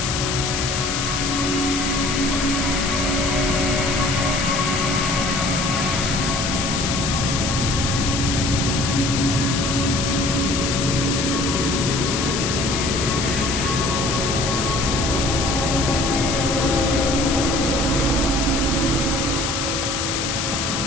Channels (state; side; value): noise; left; hiss, 2 dB below the sound